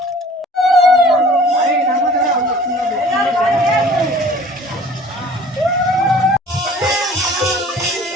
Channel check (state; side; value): normal; both; correlation 0.49